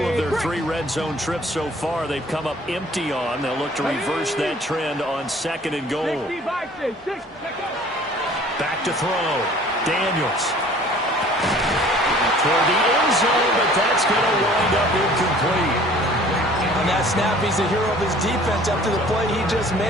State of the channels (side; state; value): both; normal; correlation 0.51